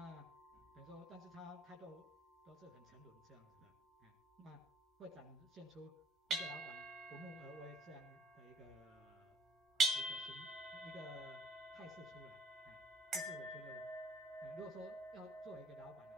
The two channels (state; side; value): normal; both; correlation 0.55